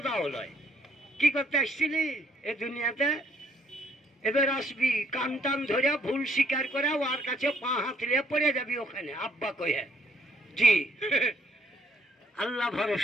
হলয়। কি করতে আসছিলি এ দুনিয়াতে? এবার আসবি কান টান ধরে ভুল স্বীকার করে ওর কাছে পা হাতলে পড়ে যাবি ওখানে আব্বা কয়ে। জি আল্লাহ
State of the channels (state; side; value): normal; both; correlation 0.66